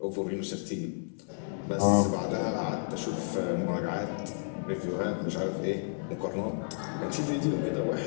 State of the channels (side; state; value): right; silent; 57 dB below the other